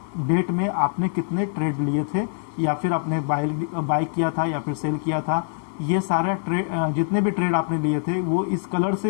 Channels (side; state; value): right; silent; 63 dB below the other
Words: डेट में आपने कितने ट्रेड लिए थे या फिर आपने बाय किया था या फिर सेल किया था। ये सारा ट्रेड, जितने भी ट्रेड आपने लिए थे वो इस कलर से